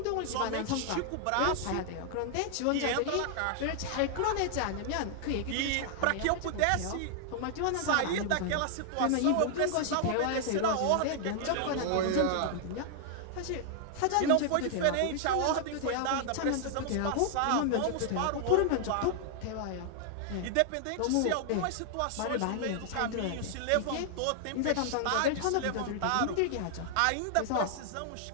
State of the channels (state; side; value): different; both; correlation 0.00